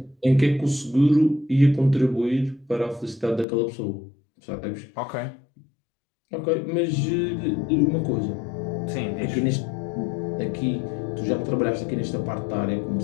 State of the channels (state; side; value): drops out; right; at 3.5 s